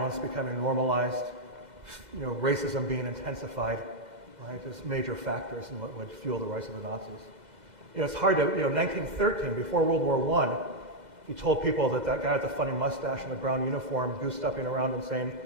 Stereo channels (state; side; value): late; left; 2.0 ms